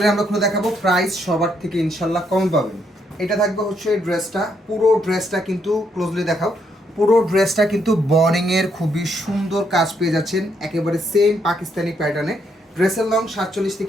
আমরা খুলে দেখাবো, প্রাইস সবার থেকে ইনশাল্লাহ কম পাবেন। এটা থাকবে হচ্ছে ড্রেসটা, পুরো ড্রেসটা কিন্তু ক্লোজলি দেখাও। পুরো ড্রেসটা কিন্তু বর্ডিংয়ের খুবই সুন্দর কাজ পেয়ে যাচ্ছেন, একেবারে সেম পাকিস্তানি প্যাটার্নে। ড্রেসের লং 47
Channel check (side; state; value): both; normal; correlation 0.75